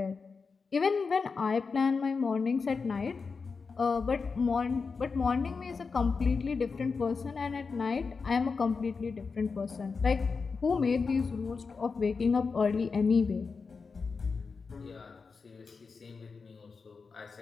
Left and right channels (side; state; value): right; quieter; 4.9 dB